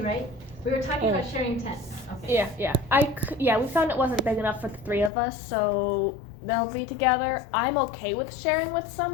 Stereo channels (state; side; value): drops out; right; at 5.1 s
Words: right? We were talking about sharing tents. Okay. Yeah. We found it wasn't big enough for the 3 of us, so they'll be together. I'm okay with sharing with